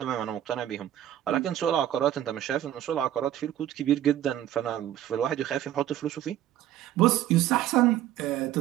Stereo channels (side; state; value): left; quieter; 12.1 dB